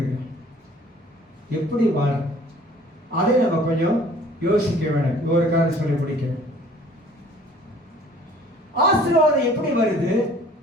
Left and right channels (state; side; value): normal; both; correlation 0.52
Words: எப்படி வாழ, அதை நம்ம கொஞ்சம் யோசிக்க வேண்டும். ஒரு காரணம் சொல்லி முடிக்கிறேன். ஆசீர்வாதம் எப்படி வருது,